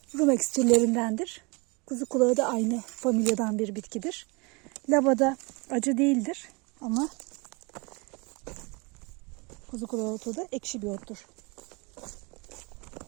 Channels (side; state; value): left; quieter; 28.6 dB